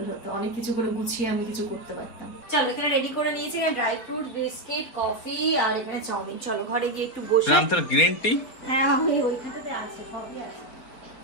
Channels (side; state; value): right; late; 4.4 ms